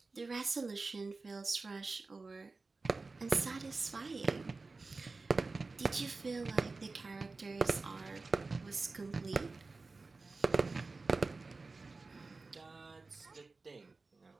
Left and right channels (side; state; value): left; quieter; 3.8 dB